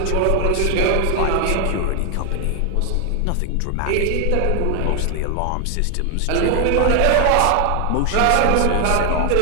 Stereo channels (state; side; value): different; both; correlation 0.01